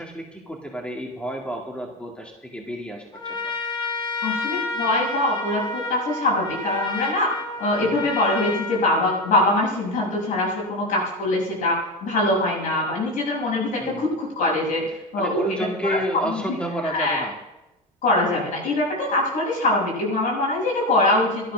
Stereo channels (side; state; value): both; normal; correlation 0.17